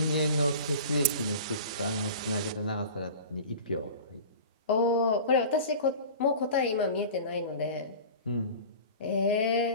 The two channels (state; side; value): inverted; both; correlation -0.37